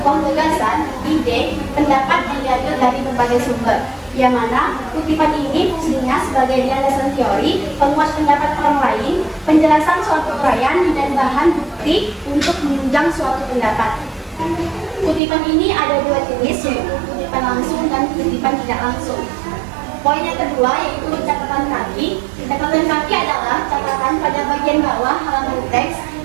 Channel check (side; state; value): left; drops out; at 15.2 s